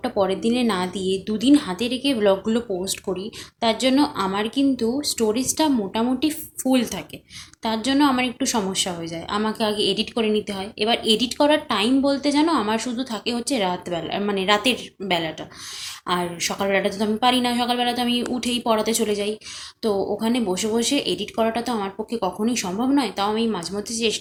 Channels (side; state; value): both; identical; correlation 1.00